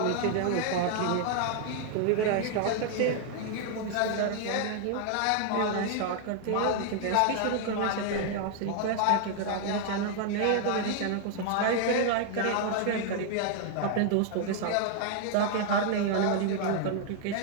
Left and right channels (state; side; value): different; both; correlation 0.00